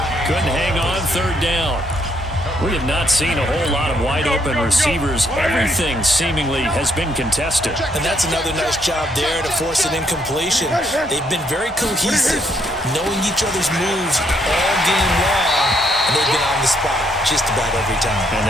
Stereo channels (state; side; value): normal; both; correlation 0.72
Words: Couldn't hang on, 3rd down. We have not seen a whole lot of wide-open receivers. Everything seemingly has been contested. And that's another nice job there to force an incompletion. They've been very cohesive, knowing each other's moves all game long, and they've been on the spot just about every time. And